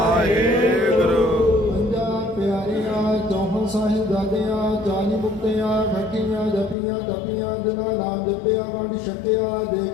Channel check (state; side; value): drops out; right; at 6.8 s